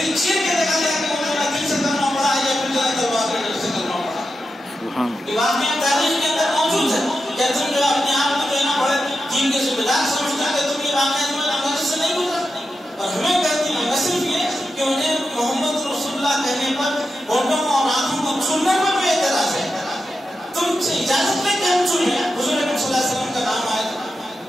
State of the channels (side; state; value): both; normal; correlation 0.89